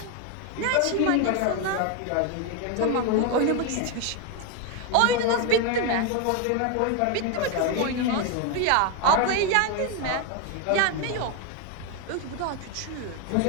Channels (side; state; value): both; different; correlation 0.01